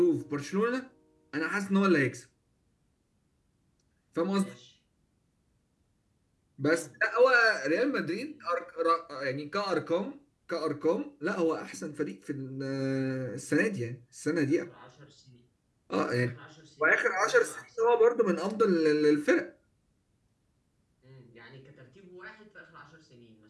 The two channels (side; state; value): both; identical; correlation 1.00